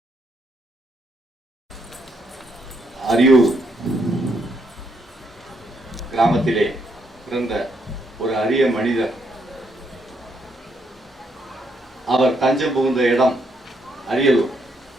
அரியூர் கிராமத்திலே பிறந்த ஒரு அரிய மனிதர். அவர் தஞ்சம் புகுந்த இடம் அரியலூர்.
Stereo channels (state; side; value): normal; both; correlation 0.75